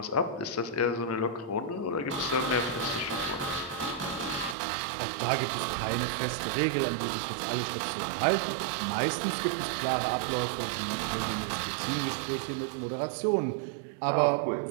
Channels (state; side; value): drops out; left; at 4.5 s